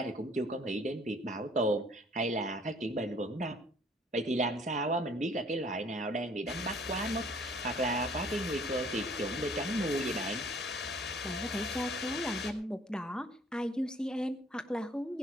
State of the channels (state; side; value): normal; both; correlation 0.57